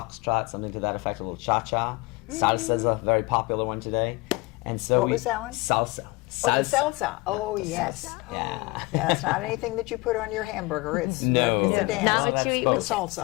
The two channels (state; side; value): quieter; right; 23.8 dB